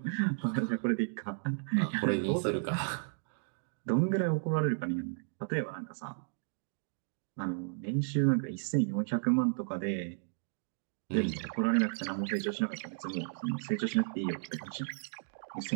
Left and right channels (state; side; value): silent; left; digital silence